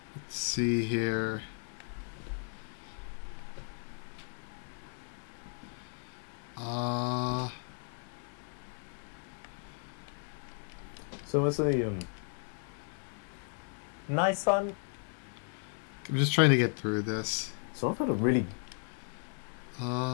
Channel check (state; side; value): silent; right; 54 dB below the other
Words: Let's see here. So it's a, Nice one. I'm just trying to get through this. So I've had a really...